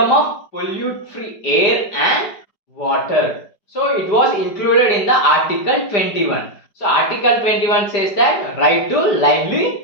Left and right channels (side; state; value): right; late; 4.9 ms